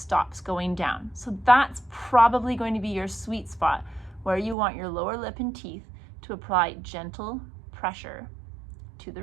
going down. So that's probably going to be your sweet spot where you want your lower lip and teeth to apply gentle pressure to the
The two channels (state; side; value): drops out; left; at 4.5 s